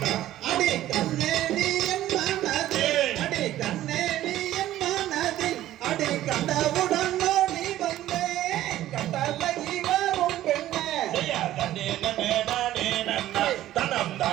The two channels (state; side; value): quieter; left; 13.7 dB